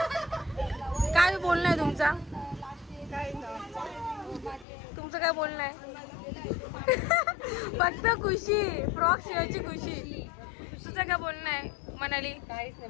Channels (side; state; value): right; drops out; at 4.7 s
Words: बोलणं आहे तुमचा? तुमचं काय बोलणं आहे? फक्त खुशी, फ्रॉक शिवायची खुशी. तुझं काय बोलणं आहे मनाली? काहीच नाही,